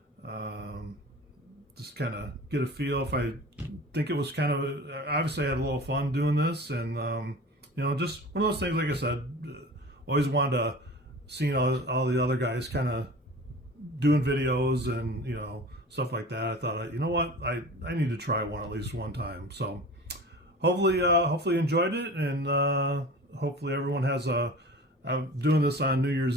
just kind of get a feel. If I think it was kind of, obviously I had a little fun doing this, and just one of those things. Like I said, always wanted to see all the other guys kind of doing videos and stuff like that. I thought, you know what, I need to try one at least one time. So hopefully enjoyed it, and hopefully everyone has I'm doing this on New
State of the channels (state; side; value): normal; both; correlation 0.38